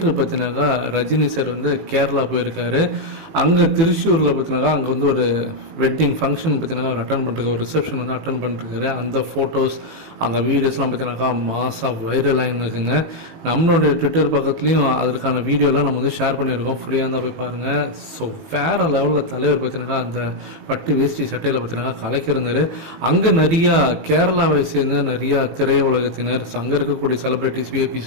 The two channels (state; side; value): late; left; 18 ms